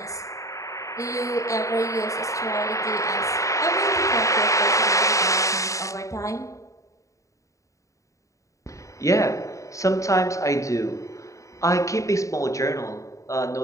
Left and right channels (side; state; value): right; late; 0.16 ms